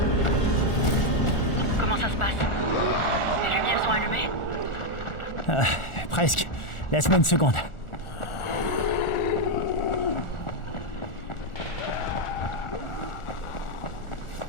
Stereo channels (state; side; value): late; right; 1.4 ms